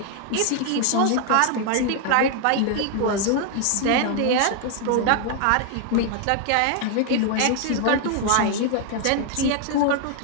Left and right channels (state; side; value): different; both; correlation 0.00